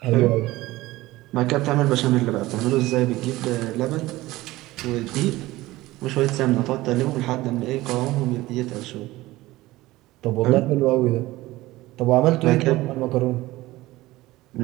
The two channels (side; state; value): left; quieter; 18.2 dB